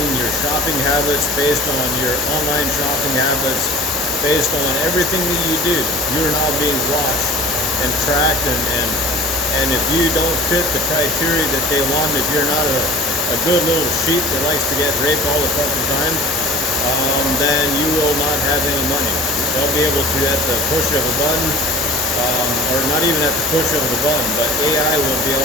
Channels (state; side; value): normal; both; correlation 0.42